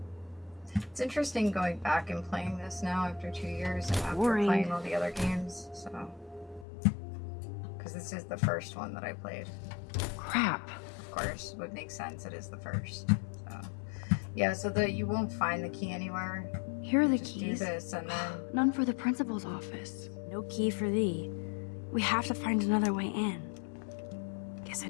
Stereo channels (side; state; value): right; drops out; at 6.7 s